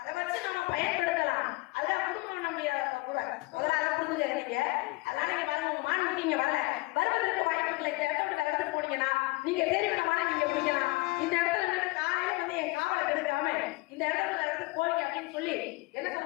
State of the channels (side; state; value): right; quieter; 23.8 dB